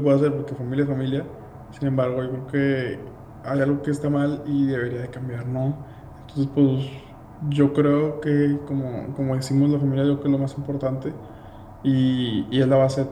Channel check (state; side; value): identical; both; correlation 1.00